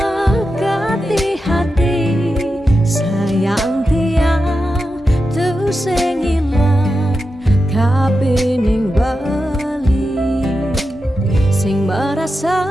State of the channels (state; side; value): normal; both; correlation 0.90